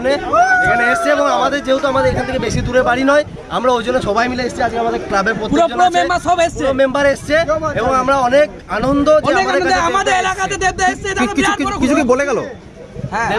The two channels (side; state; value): both; identical; correlation 1.00